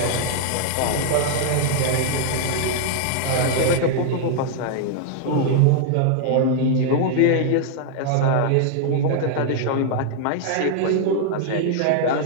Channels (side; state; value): both; different; correlation -0.01